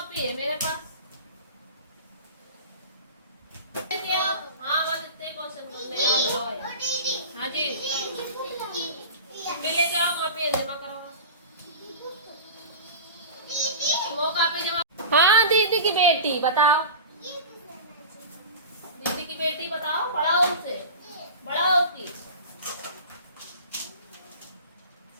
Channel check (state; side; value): inverted; both; correlation -0.33